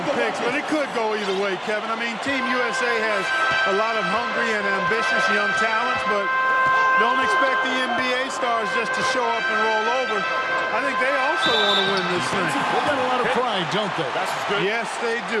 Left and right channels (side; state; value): both; identical; correlation 1.00